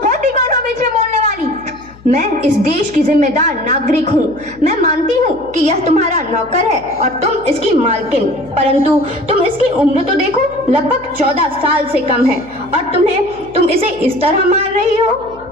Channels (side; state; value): left; noise; hum, 23 dB below the sound